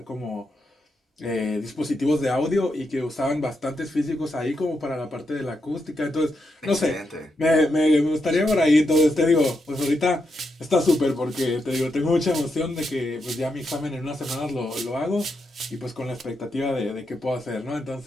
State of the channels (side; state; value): both; normal; correlation 0.83